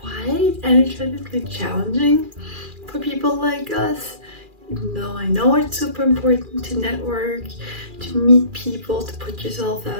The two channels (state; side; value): late; left; 2.4 ms